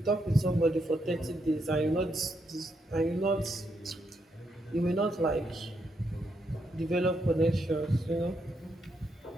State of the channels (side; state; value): both; normal; correlation 0.79